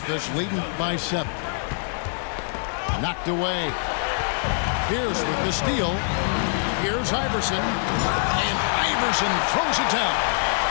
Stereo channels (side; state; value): right; silent; digital silence